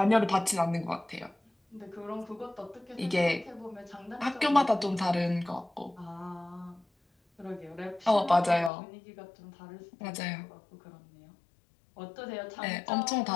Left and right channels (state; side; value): drops out; right; at 8.7 s